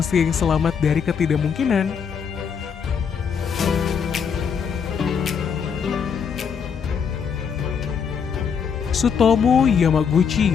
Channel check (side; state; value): right; quieter; 6.7 dB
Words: yang selamat dari ketidakmungkinan. Tsutomu